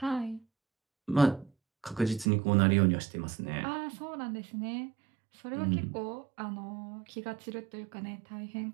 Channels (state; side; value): drops out; left; at 2.2 s